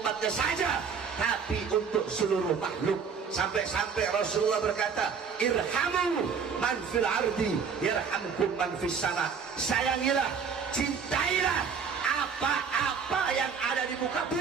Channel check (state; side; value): quieter; left; 6.1 dB